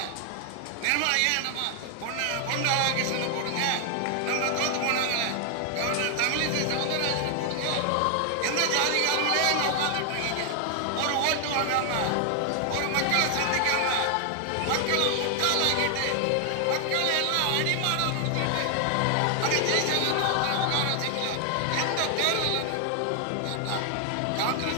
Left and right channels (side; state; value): both; different; correlation 0.00